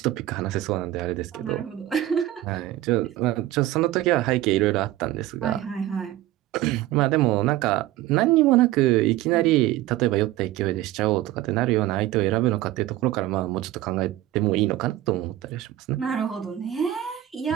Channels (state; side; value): quieter; left; 14.6 dB